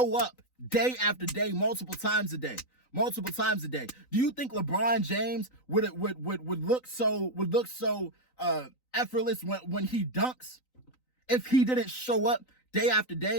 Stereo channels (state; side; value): late; right; 3.9 ms